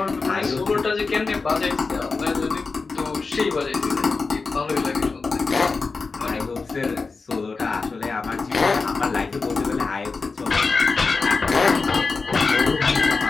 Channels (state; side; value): quieter; right; 4.3 dB